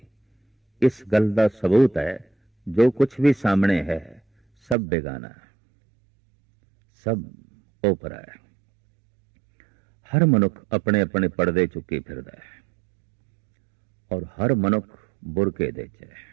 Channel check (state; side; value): drops out; left; at 4.8 s